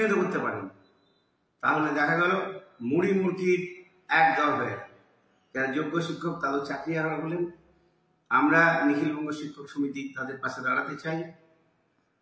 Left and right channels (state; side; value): identical; both; correlation 1.00